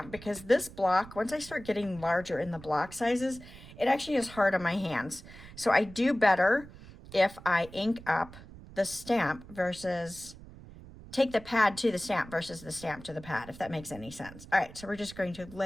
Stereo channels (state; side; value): noise; right; rumble, 17 dB below the sound